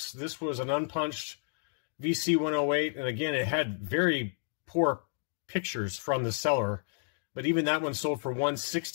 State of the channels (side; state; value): right; silent; digital silence